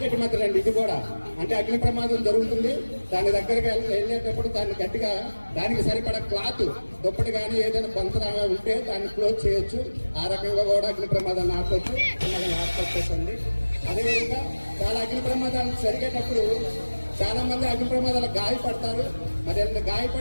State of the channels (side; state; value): both; inverted; correlation -1.00